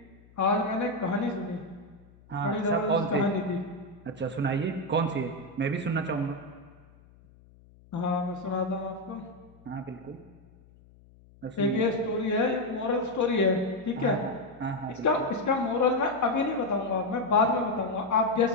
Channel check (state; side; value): noise; left; hum, 26 dB below the sound